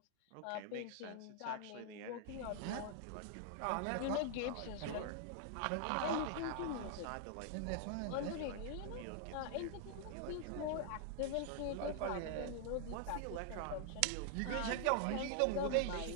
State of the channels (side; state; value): both; different; correlation 0.00